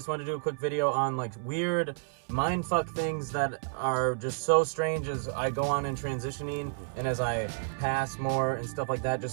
wanted to do a quick video on like weird mindfuck things that are just so strange as I go on in transitioning and as I pass more and stuff like that.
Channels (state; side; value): silent; left; 58 dB below the other